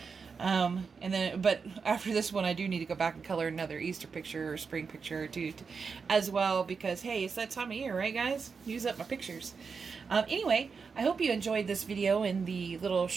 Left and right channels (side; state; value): left; quieter; 5.4 dB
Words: But after this one, I do need to go back and color another Easter picture or spring picture or two as well, because hey, it's that time of year, right guys? Use up my pictures. Anyway, I hope you enjoyed this video and the little